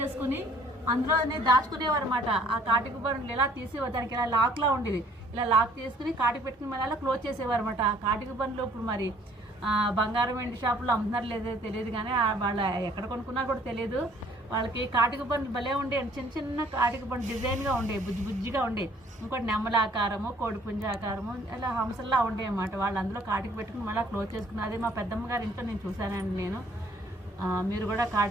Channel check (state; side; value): normal; both; correlation 0.59